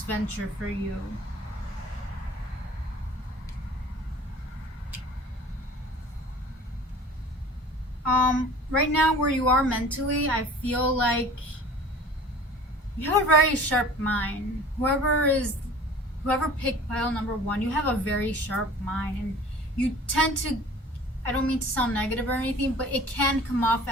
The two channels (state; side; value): normal; both; correlation 0.44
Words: venture for you. Right now where you are mentally, I feel like you have a very sharp mind. Whoever picked pile number 1, you have a very sharp mind, and you tend to, I don't mean to sound negative or anything, but it can come off